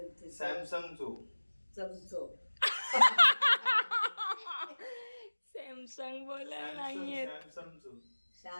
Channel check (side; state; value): both; inverted; correlation -1.00